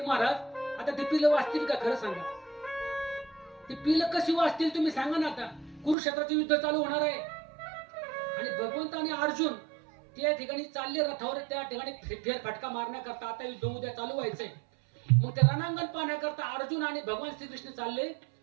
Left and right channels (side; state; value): left; drops out; at 6.0 s